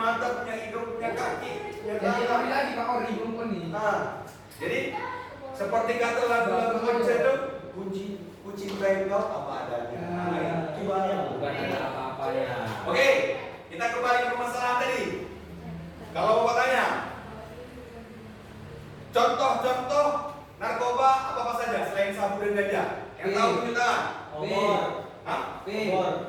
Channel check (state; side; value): identical; both; correlation 1.00